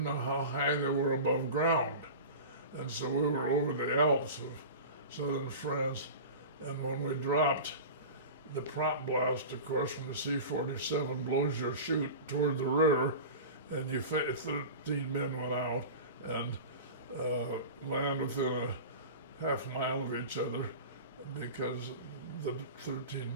know how high they were above ground. And so we were over the Alps of southern France, and when we dropped, the prop blast, of course, from the C-47 blows your chute toward the rear, and 13 men went out and land within a half mile of each other because the 13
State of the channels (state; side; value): inverted; both; correlation -0.32